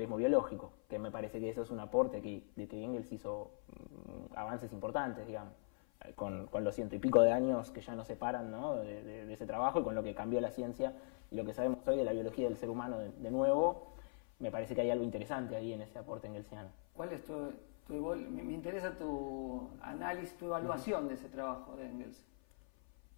biológico, que me parece que eso es un aporte de que Engels hizo avances importantes, digamos, con los 100 y pico de años que ya nos separan, ¿no?, de ese trabajo, y con lo que cambió la ciencia y lo que sabemos hoy de la biología del ser humano de nuevo. Me parece que hay algo interesante ahí en ese aporte engelsiano. ¿Cuál es me interesa tu análisis, tu evaluación de ese trabajo de Engels?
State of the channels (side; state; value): right; silent; 50 dB below the other